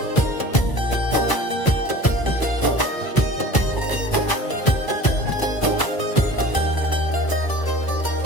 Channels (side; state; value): right; late; 1.0 ms